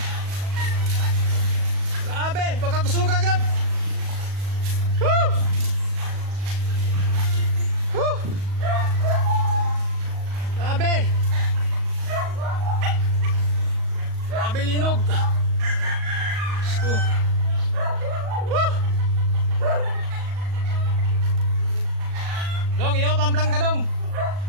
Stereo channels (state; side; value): late; left; 38 ms